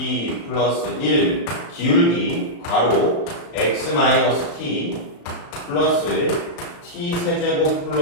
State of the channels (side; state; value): right; late; 35 ms